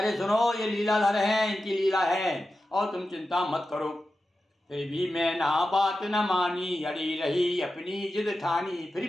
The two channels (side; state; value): both; normal; correlation 0.92